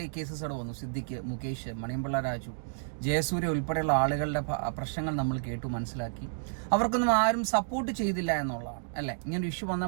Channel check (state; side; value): silent; left; digital silence